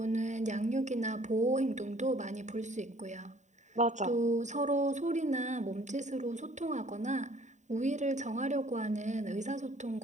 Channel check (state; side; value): late; left; 0.34 ms